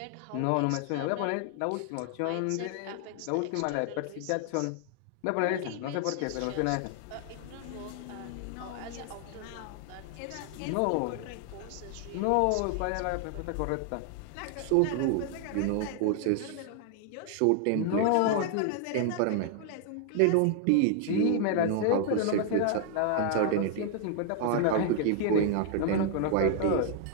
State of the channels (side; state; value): both; different; correlation 0.00